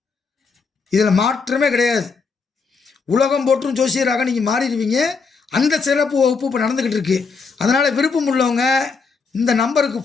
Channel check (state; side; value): quieter; right; 4.9 dB